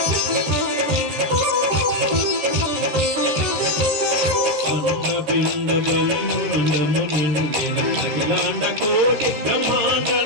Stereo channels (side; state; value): left; late; 13 ms